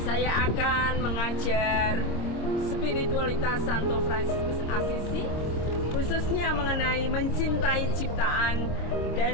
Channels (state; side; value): late; right; 25 ms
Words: Saya akan mengajar spiritualitas Santo Fransiskus Asisi, khususnya mengenai mencintai ciptaan